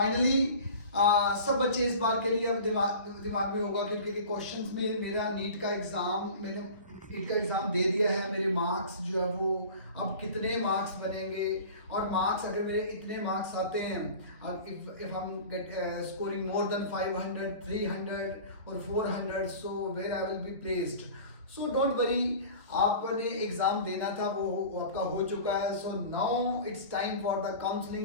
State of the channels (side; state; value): both; inverted; correlation -0.39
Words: सब बच्चे इस बार के लिए अब दिमाग में होगा क्योंकि क्वेश्चंस में मेरा नीट का एग्जाम दे दिया है। मेरे मार्क्स जो है वो अब कितने मार्क्स बनेंगे और मार्क्स अगर मेरे इतने मार्क्स आते हैं, अब इफ हम गेट स्कोरिंग मोर देन 500 300 और 400 so where I will be placed. So don't worry, आपने एग्जाम देना था वो आपका हो चुका है। So now it's time for the